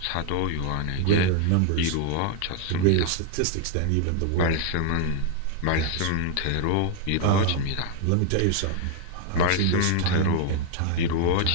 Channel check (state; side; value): different; both; correlation 0.00